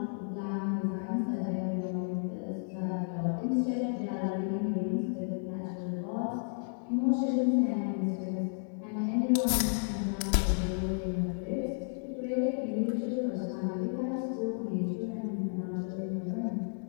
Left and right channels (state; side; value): silent; right; digital silence